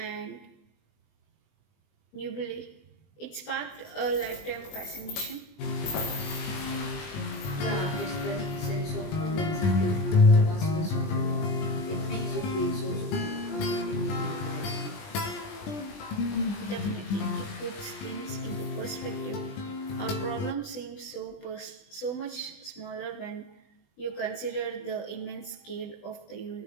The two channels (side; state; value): right; late; 20 ms